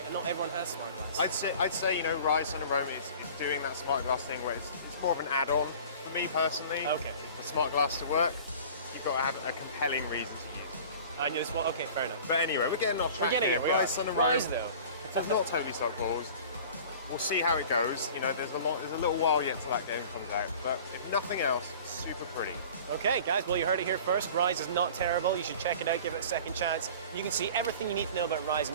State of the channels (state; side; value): inverted; both; correlation -0.43